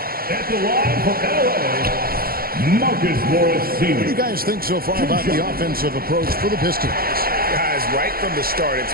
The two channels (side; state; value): left; late; 0.43 ms